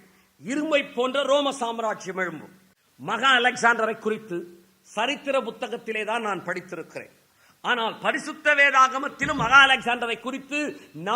இரும்பை போன்ற ரோம சாம்ராஜ்யம் எழும்பும். மகா அலெக்சாண்டரை குறித்து சரித்திர புத்தகத்திலே தான் நான் படித்திருக்கிறேன். ஆனால் பரிசுத்த வேதாகமத்திலும் மகா அலெக்சாண்டரை குறித்து,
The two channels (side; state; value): both; identical; correlation 1.00